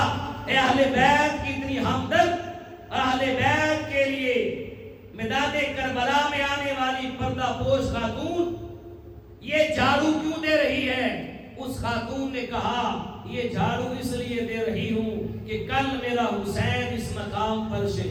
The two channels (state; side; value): identical; both; correlation 1.00